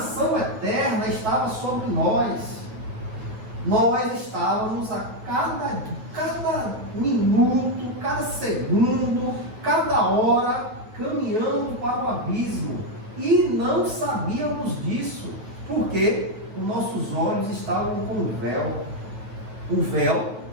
eterna estava sobre nós. nós estávamos a cada minuto, cada segundo, cada hora, caminhando para o abismo. E não sabíamos disso, porque os nossos olhos estavam com o véu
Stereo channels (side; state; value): left; late; 9.2 ms